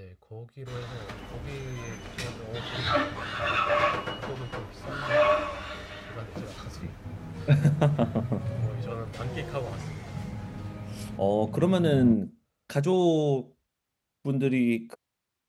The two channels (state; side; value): identical; both; correlation 1.00